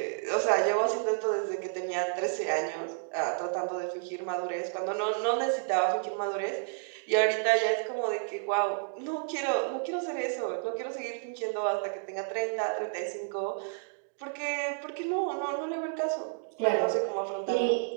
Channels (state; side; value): silent; left; digital silence